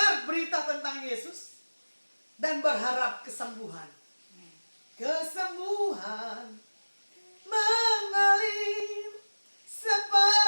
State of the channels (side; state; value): both; inverted; correlation -1.00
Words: berita tentang Yesus dan berharap kesembuhan. Kesembuhan mengalir